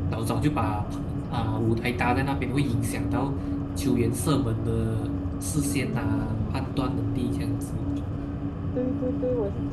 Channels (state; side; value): identical; both; correlation 1.00